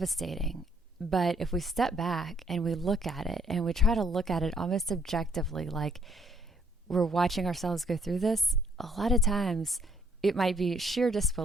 But if we step back and we look at it and we try to look at it almost objectively, like we're watching ourselves go through this, a lot of times it might be sheer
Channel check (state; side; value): normal; both; correlation 0.66